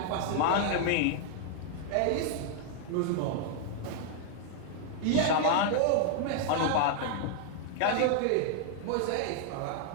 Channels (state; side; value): different; both; correlation 0.00